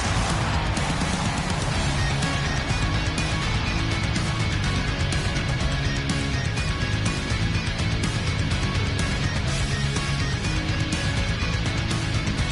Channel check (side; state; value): both; identical; correlation 1.00